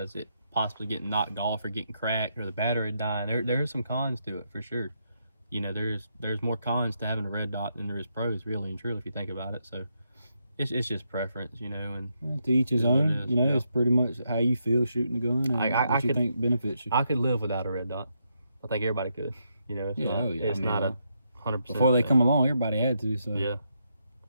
is it possibly getting knocked off or getting cracked or the battery dying. There's some cons to it for sure. You know, there's more cons to having a red dot than there is pros, really and truly, if you think about it. So it's just preference, you know. And to each his own. You know, it's pretty much how you feel shooting the gun and what you think benefits you. I could live without a red dot. I think everybody could. You know, it's not a 100%. Before they come along, everybody had to. So yeah.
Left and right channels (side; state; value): both; inverted; correlation -0.80